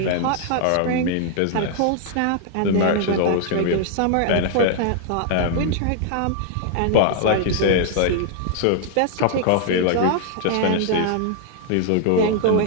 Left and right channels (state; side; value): different; both; correlation 0.00